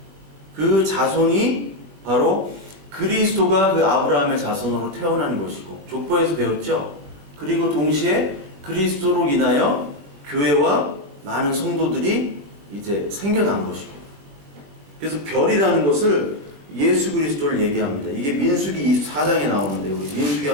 그 자손이 바로 그리스도가 그 아브라함의 자손으로 태어나는 것이고, 족보에서 배웠죠. 그리고 동시에 그리스도로 인하여 교회와 많은 성도들이 이제 생겨난 것이고, 그래서 별이라는 것을 예수 그리스도를 얘기합니다. 이게 민수기 24장에 나오는데, 우리 민수기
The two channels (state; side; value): late; left; 21 ms